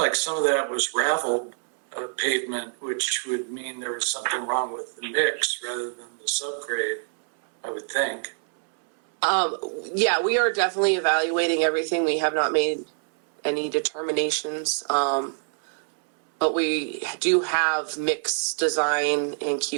some of that was raveled pavement, which would mean there was something wrong with the mix rather than the subgrade, I would think. Yeah, we are definitely evaluating everything. We have not made any determinations. But we do have mix design and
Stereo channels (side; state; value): left; silent; 62 dB below the other